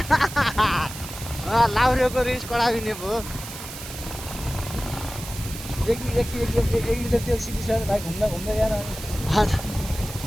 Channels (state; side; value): noise; right; hiss, 11 dB below the sound